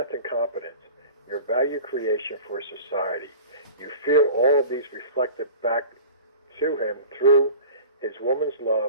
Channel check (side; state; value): both; inverted; correlation -0.40